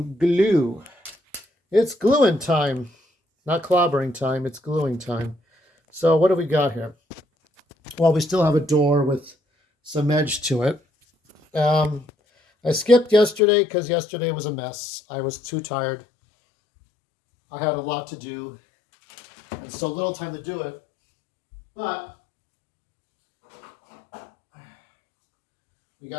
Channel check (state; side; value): drops out; right; at 13.4 s